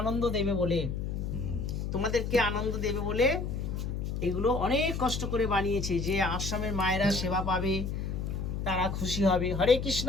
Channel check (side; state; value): left; noise; hum, 3 dB below the sound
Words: দেবে বলে এগুলো অনেক কষ্ট করে বানিয়েছে, যে আশ্রমের মায়েরা সেবা পাবে, তারা খুশি হবে। হরে কৃষ্ণ।